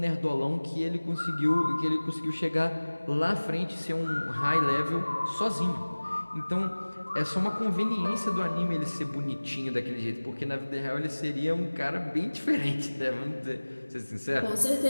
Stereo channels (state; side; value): inverted; both; correlation -1.00